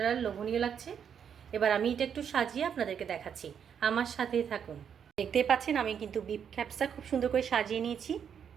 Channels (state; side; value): quieter; left; 7.9 dB